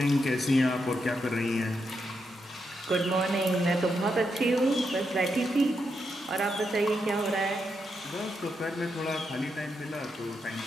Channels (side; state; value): both; normal; correlation 0.83